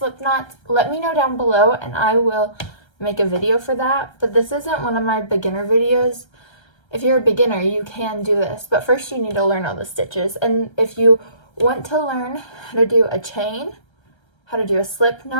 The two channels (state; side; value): late; right; 1.3 ms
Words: knots, let me know down below and I will make a video for that. But this isn't one of my beginner videos. If you're a beginner, you can do this, but first you need to learn all the stitches. And if you want to learn how to do a chain, how to do a slip